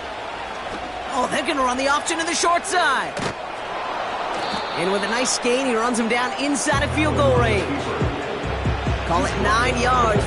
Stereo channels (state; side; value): identical; both; correlation 1.00